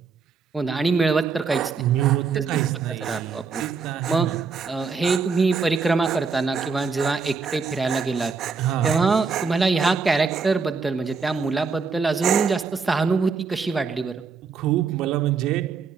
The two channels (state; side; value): quieter; left; 5.1 dB